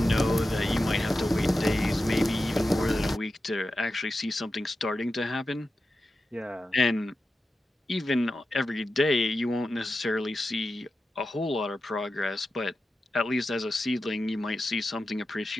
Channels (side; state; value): both; normal; correlation 0.92